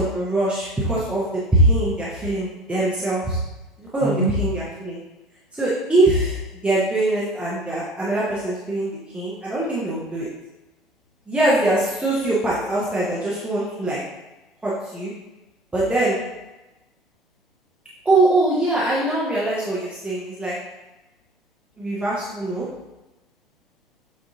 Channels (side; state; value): both; normal; correlation 0.46